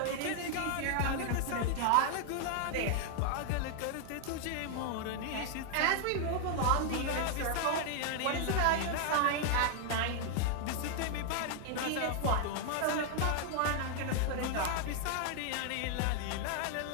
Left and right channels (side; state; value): both; different; correlation 0.00